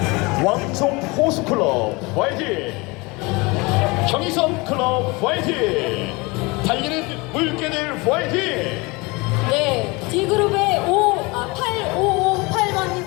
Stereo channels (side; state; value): right; quieter; 25.6 dB